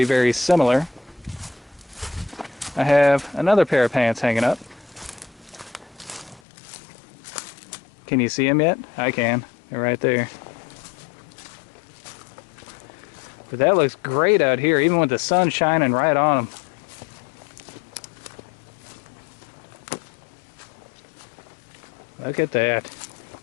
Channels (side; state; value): right; drops out; at 6.4 s